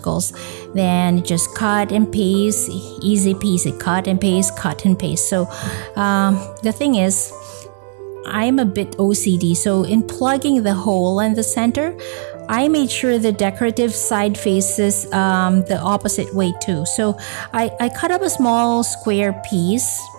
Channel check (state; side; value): silent; left; 68 dB below the other